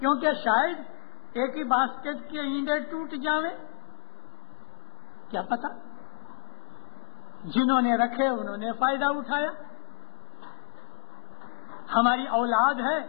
شاید ایک ہی باسکٹ کے انڈے ٹوٹ جاویں, کیا پتا. جنہوں نے رکھے انہوں نے فائدہ اٹھایا. ہماری اولاد ہے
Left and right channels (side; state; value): right; silent; digital silence